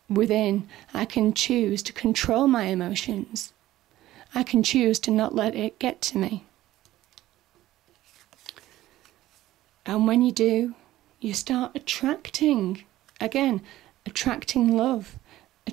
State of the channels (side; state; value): left; quieter; 15.0 dB